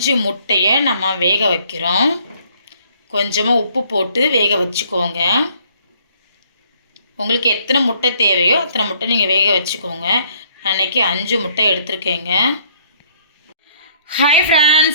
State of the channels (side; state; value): both; inverted; correlation -0.63